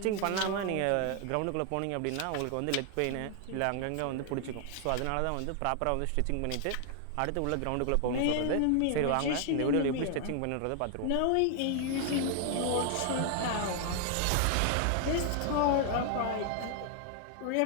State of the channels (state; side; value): different; both; correlation 0.00